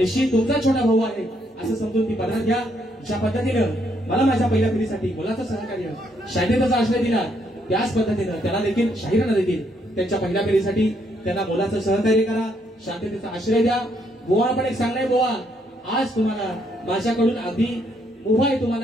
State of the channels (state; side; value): normal; both; correlation 0.73